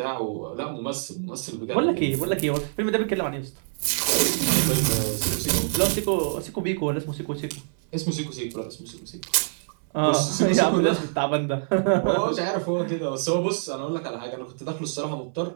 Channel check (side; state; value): left; silent; 61 dB below the other